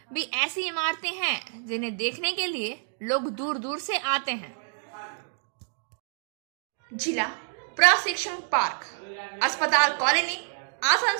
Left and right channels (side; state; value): left; silent; digital silence